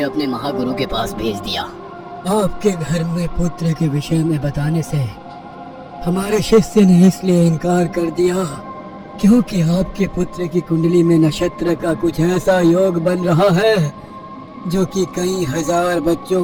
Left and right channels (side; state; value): both; identical; correlation 1.00